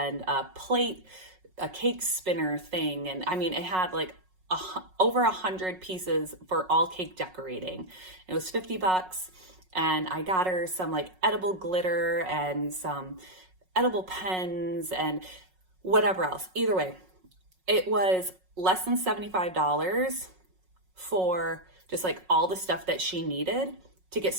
a plate, a cake spinner thing. And I mean, it had like over 100 pieces for all cake decorating. It was $50, and I got her some like edible glitter and some edible pens and whatever else. Either way, it was less than $75 for just like all the stuff that she needed to get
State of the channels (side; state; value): left; late; 5.4 ms